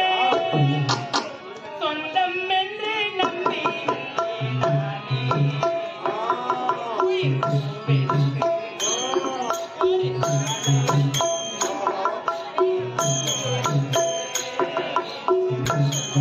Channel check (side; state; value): both; identical; correlation 1.00